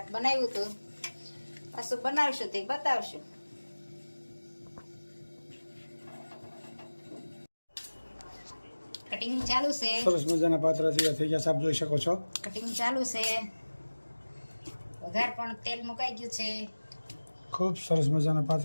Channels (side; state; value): both; inverted; correlation -1.00